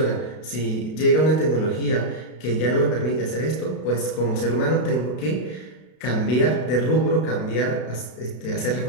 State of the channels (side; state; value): right; late; 32 ms